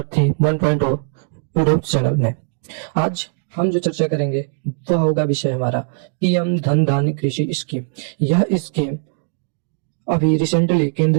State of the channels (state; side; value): silent; left; digital silence